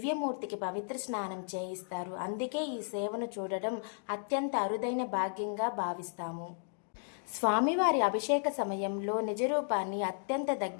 పవిత్ర స్నానం చేయిస్తారు. అందుకే ఈ సేవను చూడడం అత్యంత అరుదైన భాగ్యంగా భావిస్తాము. స్వామివారి అభిషేక సమయంలో నిజరూపాన్ని అత్యంత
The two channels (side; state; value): right; silent; digital silence